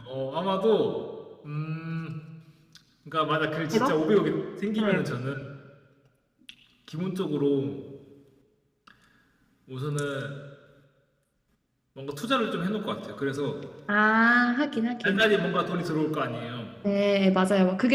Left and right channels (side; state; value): both; identical; correlation 1.00